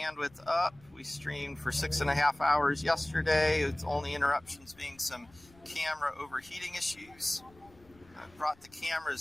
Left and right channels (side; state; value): left; noise; rumble, 27 dB below the sound